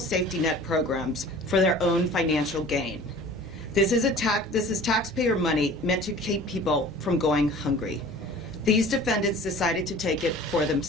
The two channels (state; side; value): normal; both; correlation 0.44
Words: net programs for their own financial gain. This is taxpayer money meant to keep people from going hungry. These defendants decided to take it for